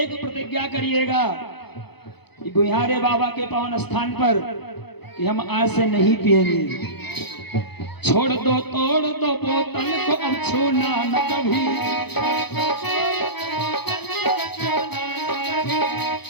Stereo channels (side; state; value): right; late; 0.98 ms